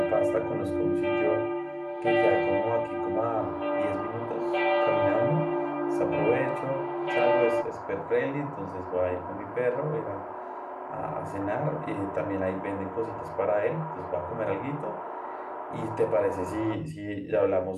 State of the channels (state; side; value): identical; both; correlation 1.00